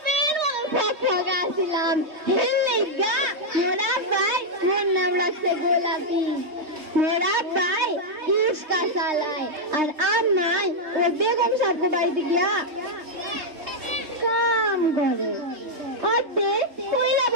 ফকফকা ছিলাম। হেলেগা মোরা ভাই মোর নাম রাখছে গোলাপি। মোরা ভাই ইস্কা চালায় আর আমায় ও বেগম সাহেব বাড়িতে গিয়া কাম করে। পয়লা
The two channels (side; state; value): left; late; 3.3 ms